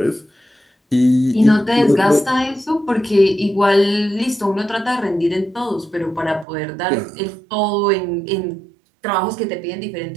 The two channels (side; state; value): left; drops out; at 6.5 s